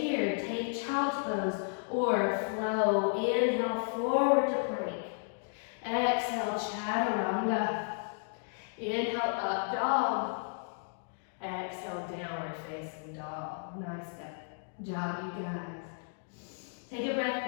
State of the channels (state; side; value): silent; right; digital silence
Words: take child's pose or flow. Inhale, forward to plank. Exhale, chaturanga. Inhale, up dog. Exhale, downward facing dog. Nice job, you guys. Take a